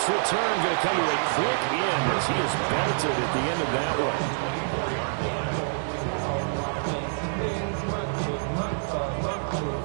return going to come to a quick end as he is belted at the end of that one.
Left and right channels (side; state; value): left; silent; digital silence